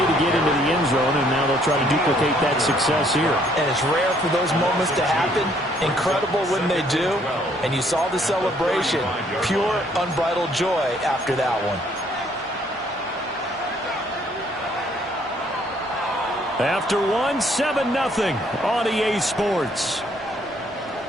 get into the end zone, and now they'll try to duplicate that success here. And it's rare for those moments to happen. Incredible when they do. And you saw the celebration. Pure, unbridled joy after that one. After one, 7-0 on EA Sports.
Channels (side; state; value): both; normal; correlation 0.65